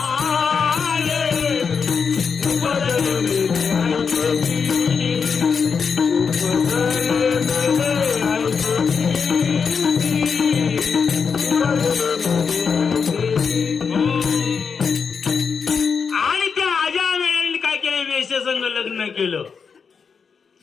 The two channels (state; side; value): quieter; right; 5.9 dB